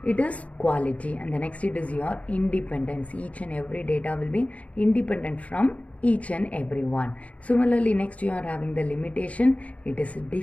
It is quality. And the next, it is your independence. Each and every data will be independent from each and every one. Similarly, next you are having the limitation. It is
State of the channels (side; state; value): right; late; 0.067 ms